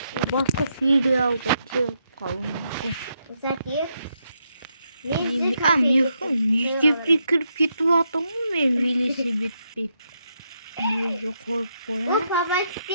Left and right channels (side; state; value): both; inverted; correlation -0.80